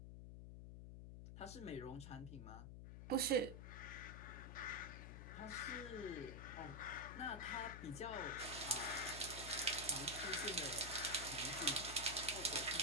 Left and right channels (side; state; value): left; noise; hum, 9 dB below the sound